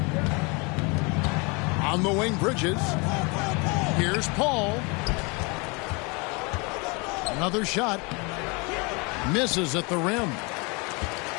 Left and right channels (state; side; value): quieter; right; 29.5 dB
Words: On the wing, Bridges. Here's Paul. Another shot. Misses at the rim.